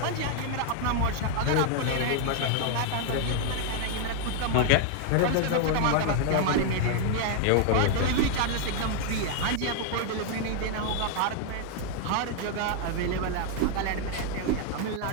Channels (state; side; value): different; both; correlation 0.00